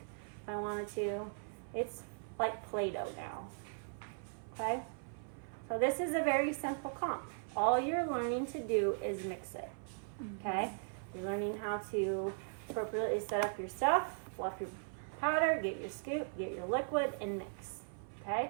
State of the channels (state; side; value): silent; left; 52 dB below the other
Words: if I wanted to. It's like Play-Doh now, okay? So this is a very simple comp. All you're learning to do is mix it, okay? You're learning how to appropriately set up your stuff, fluff your powder, get your scoop, get your liquid, and mix, okay?